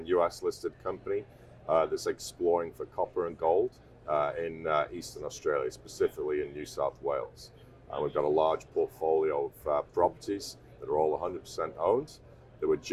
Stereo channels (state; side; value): identical; both; correlation 1.00